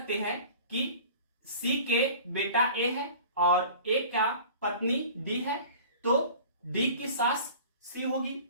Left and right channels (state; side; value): inverted; both; correlation -0.42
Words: हैं कि सी के बेटा ए है और ए का पत्नी डी है, तो डी की सास सी होगी।